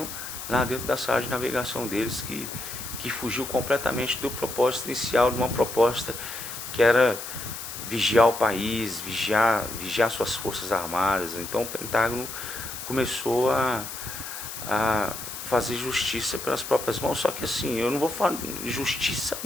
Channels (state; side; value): noise; left; hiss, 9 dB below the sound